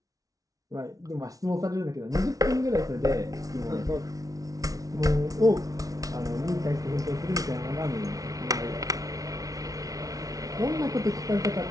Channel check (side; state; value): left; late; 0.17 ms